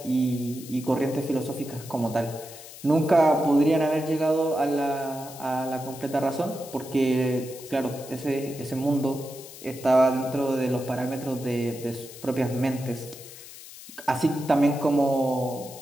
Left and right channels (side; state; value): left; noise; hiss, 16 dB below the sound